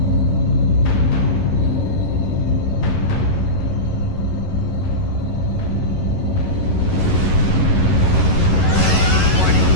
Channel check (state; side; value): late; right; 11 ms